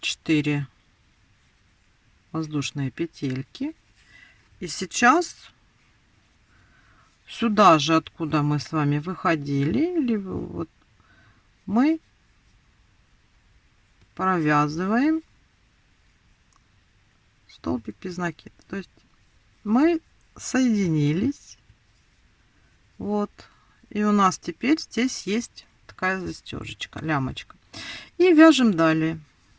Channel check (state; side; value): identical; both; correlation 1.00